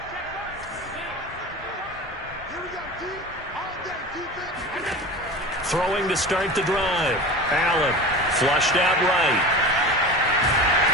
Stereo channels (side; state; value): both; normal; correlation 0.32